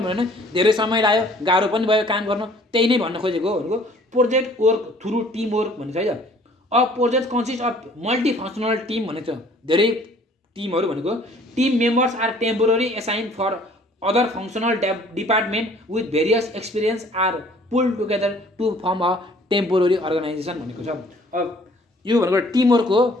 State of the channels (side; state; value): both; normal; correlation 0.55